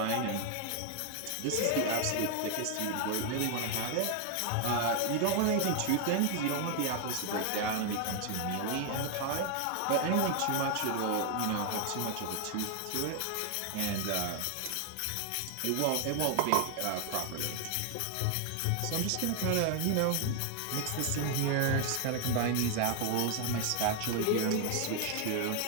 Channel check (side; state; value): both; different; correlation 0.00